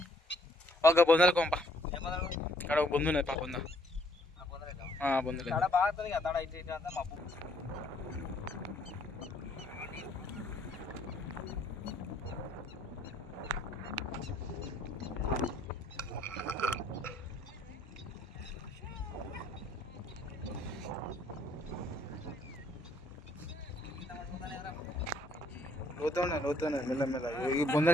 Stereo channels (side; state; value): both; normal; correlation 0.66